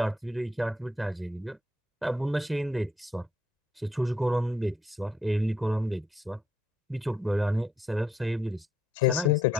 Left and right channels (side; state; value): both; normal; correlation 0.73